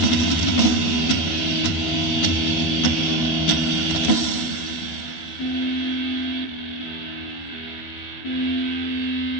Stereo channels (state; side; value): late; right; 12 ms